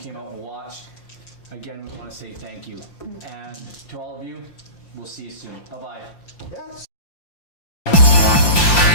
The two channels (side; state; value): right; late; 5.7 ms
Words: came out and watched. Again, we want to say thank you. And to all of you, we'll see you soon. Bye-bye. Yeah.